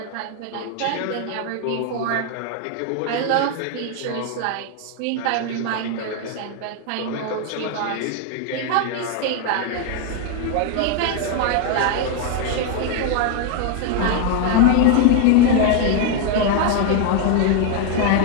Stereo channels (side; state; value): both; different; correlation 0.01